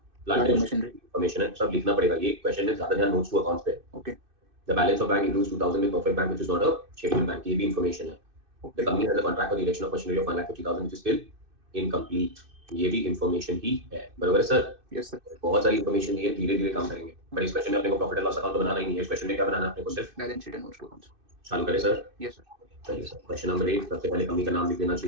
plant and machinery. Information है, सब लिखना पड़ेगा। ये क्वेश्चन में ज्यादा ध्यान नोट्स टू अकाउंट्स पे। Okay. The balance of bank includes 2000 with perfect bank which is not a scheduled bank। ये भी इंफॉर्मेशन है। The company has a contract for the erection of machinery of 1,50,000 which is still incomplete। ये भी information ही है। बराबर है sir? Yes sir. बहुत सारी इंफॉर्मेशन दी है, धीरे धीरे काम करेंगे। बट इस क्वेश्चन में अपने को प्रॉफिट एंड लॉस अकाउंट तो बनाना ही नहीं है। इस क्वेश्चन में क्या बनाना है अपने को? सिर्फ balance sheet and notes to accounts. चालू करें सर? Yes sir. चलिए सर, क्वेश्चन नंबर 8 सबसे पहले कंपनी का नाम लिख देना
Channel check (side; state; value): left; late; 2.6 ms